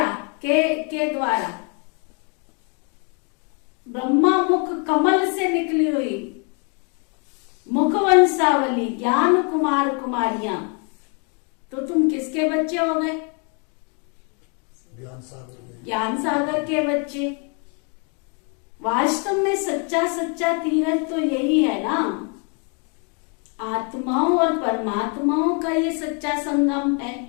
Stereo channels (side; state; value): right; quieter; 37.4 dB